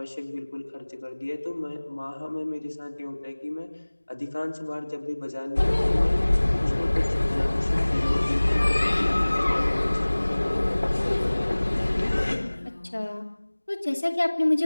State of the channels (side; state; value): both; inverted; correlation -1.00